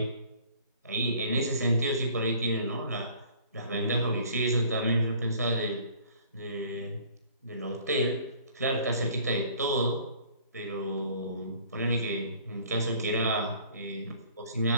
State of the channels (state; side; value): inverted; both; correlation -0.53